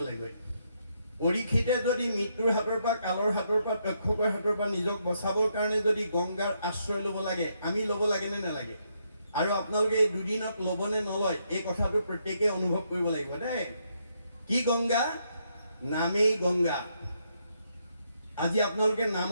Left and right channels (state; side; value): inverted; both; correlation -0.76